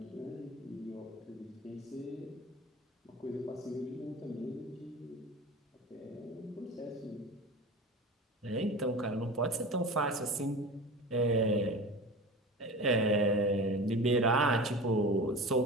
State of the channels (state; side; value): normal; both; correlation 0.33